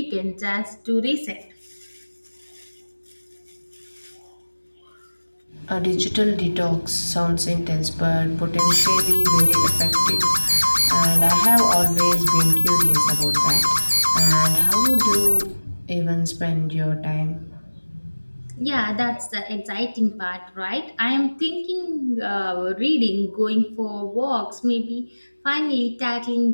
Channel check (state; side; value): inverted; both; correlation -1.00